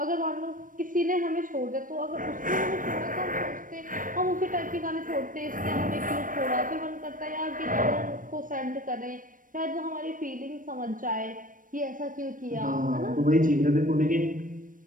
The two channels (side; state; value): left; late; 0.39 ms